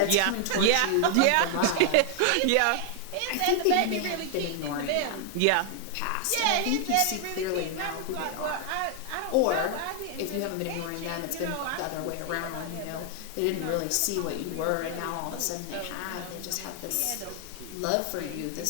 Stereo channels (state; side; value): different; both; correlation 0.00